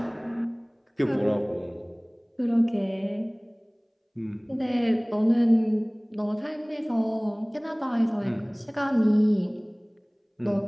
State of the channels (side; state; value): both; identical; correlation 1.00